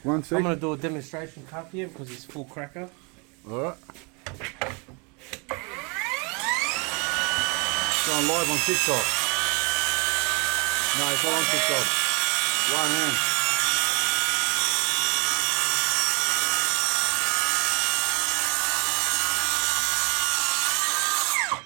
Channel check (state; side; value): quieter; left; 31.7 dB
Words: I'm gonna do a demonstration cut here because it's full cracker. Alright. Going live on TikTok. No, it's not on TikTok. One hand.